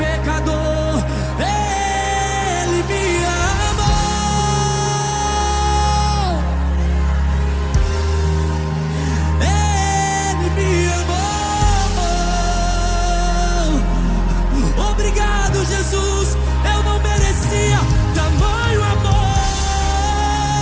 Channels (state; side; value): identical; both; correlation 1.00